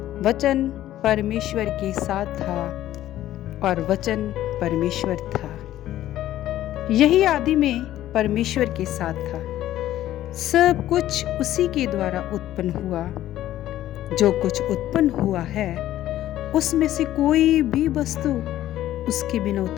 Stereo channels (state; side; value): quieter; right; 13.4 dB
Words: वचन परमेश्वर के साथ था और वचन परमेश्वर था। यही आदि में परमेश्वर के साथ था। सब कुछ उसी के द्वारा उत्पन्न हुआ। जो कुछ उत्पन्न हुआ है उसमें से कोई भी वस्तु उसके बिना